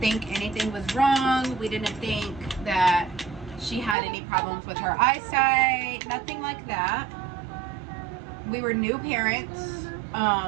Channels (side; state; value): left; drops out; at 4.0 s